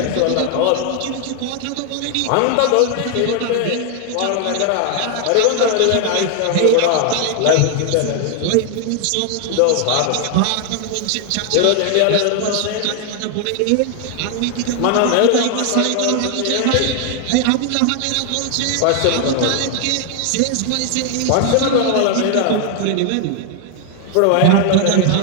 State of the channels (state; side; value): different; both; correlation 0.00